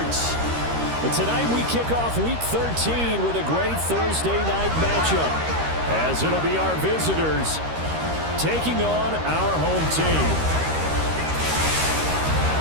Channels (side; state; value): left; late; 13 ms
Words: But tonight we kick off Week 13 with a great Thursday night matchup, as it'll be our visitors taking on our home team.